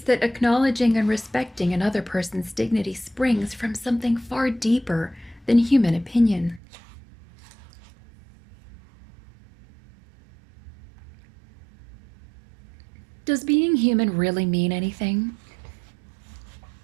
that acknowledging and respecting another person's dignity springs from something far deeper than human opinion? Does being human really mean anything?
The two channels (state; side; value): drops out; left; at 6.6 s